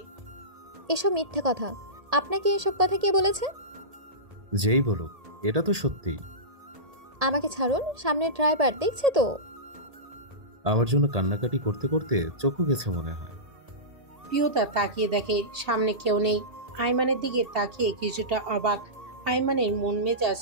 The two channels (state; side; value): late; left; 1.8 ms